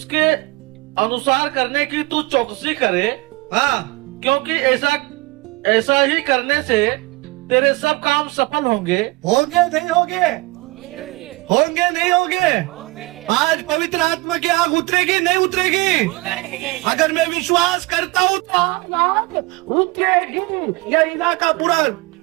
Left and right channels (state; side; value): quieter; left; 23.1 dB